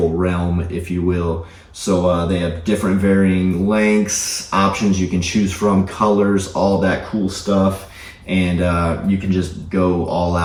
realm, if you will. So they have different varying lengths, options you can choose from, colors, all that cool stuff. And you can just go all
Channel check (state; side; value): identical; both; correlation 1.00